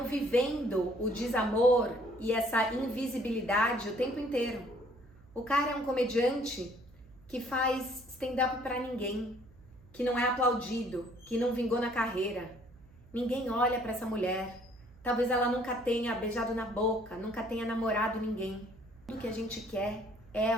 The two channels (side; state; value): right; noise; hum, 25 dB below the sound